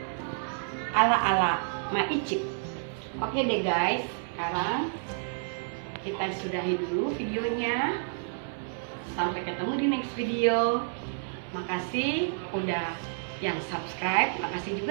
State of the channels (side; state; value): left; silent; 58 dB below the other